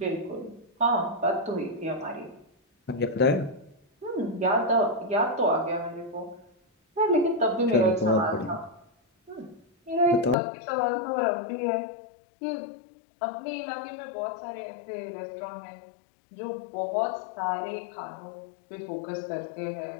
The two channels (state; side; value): drops out; right; at 10.4 s